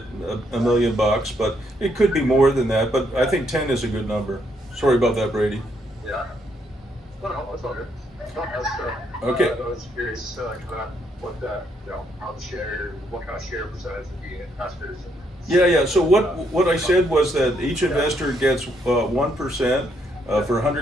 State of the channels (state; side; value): normal; both; correlation 0.74